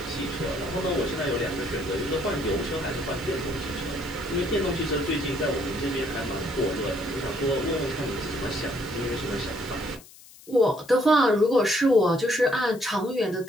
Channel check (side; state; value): left; noise; hiss, 21 dB below the sound